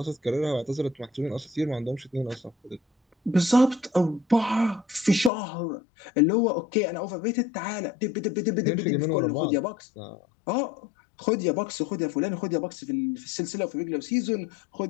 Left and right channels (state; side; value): drops out; right; at 5.3 s